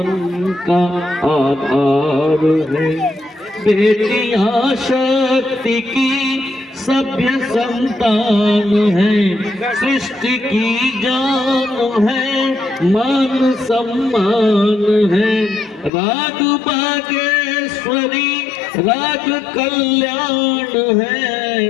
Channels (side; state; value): right; drops out; at 15.9 s